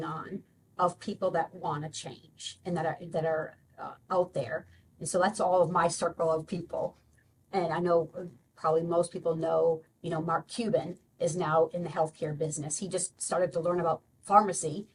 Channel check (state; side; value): identical; both; correlation 1.00